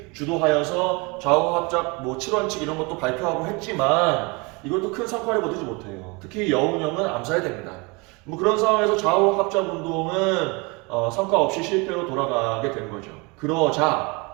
주도하여서 좌우 합작 7원칙 이런 것도 발표하고 했지만 이것도 큰 성과를 거두지 못해요. 특히 여운형은 암살이 됩니다. 그런 상황에서 좌우 합작 운동은 성과 없이 실패로 돌아가게 된 거죠. 그러자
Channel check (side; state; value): left; quieter; 28.2 dB